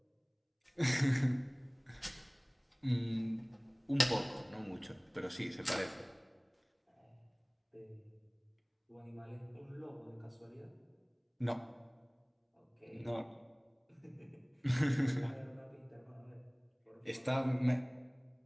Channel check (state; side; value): identical; both; correlation 1.00